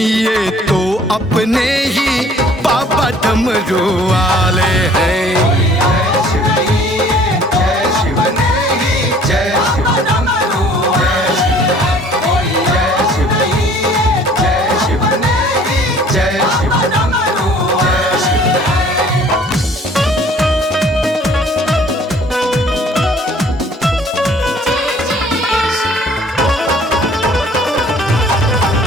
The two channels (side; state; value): both; normal; correlation 0.54